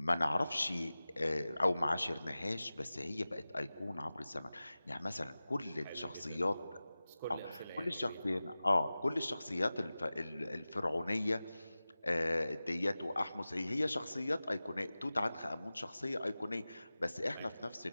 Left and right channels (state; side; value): inverted; both; correlation -0.96